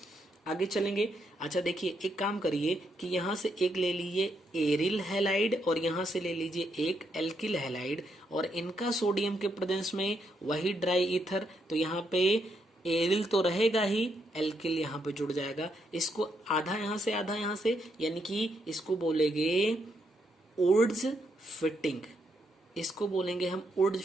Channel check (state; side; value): normal; both; correlation 0.78